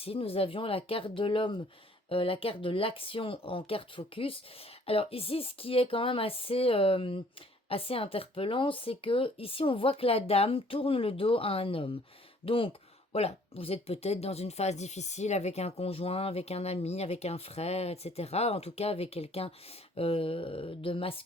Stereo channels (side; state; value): both; normal; correlation 0.58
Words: nous avions la carte de l'homme, la carte de l'action en carte focus. Alors ici, ce qui est quand même assez interpellant, c'est que ici, on voit que la dame tourne le dos à un homme. Donc, voilà, vous êtes peut-être dans une phase difficile avec un conjoint, avec un ami, avec un frère, etc. En tout cas, avec quelqu'un de